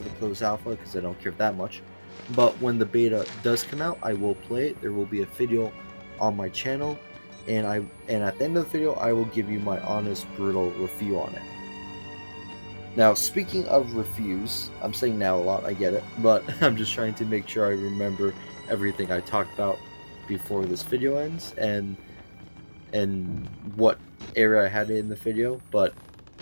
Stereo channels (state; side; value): inverted; both; correlation -1.00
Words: the closed alpha because I don't care that much. But when the beta does come out, I will play it. There will be a video on my channel, and at the end of the video, I will give you my honest, brutal review on it. Now, speaking of reviews, I'm saying now a lot, I get it, but I'm just trying to make sure I remember everything I talked about before this video ends, and what area I had in the video, but